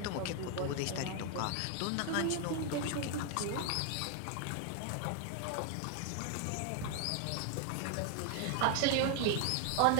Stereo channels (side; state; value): both; different; correlation 0.00